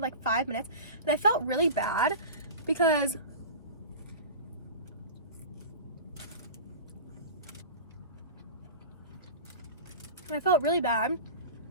like 5 minutes, and I felt really bad because I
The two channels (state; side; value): inverted; both; correlation -0.32